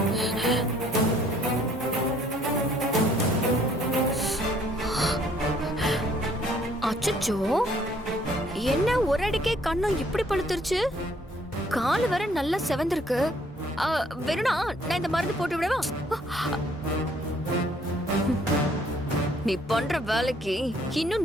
அச்சச்சோ, என்ன ஒரு அடிக்கே கண்ணும் இப்படி பழுத்துருச்சு? கால் வர நல்லா செவந்திருக்கு. வேணும்னா நான் இந்த மருந்து போட்டு விடவா? நீ பண்ற வேலைக்கு இன்னும்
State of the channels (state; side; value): normal; both; correlation 0.62